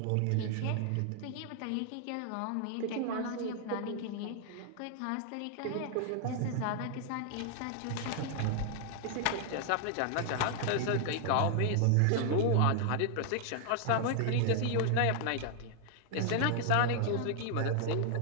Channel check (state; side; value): different; both; correlation 0.00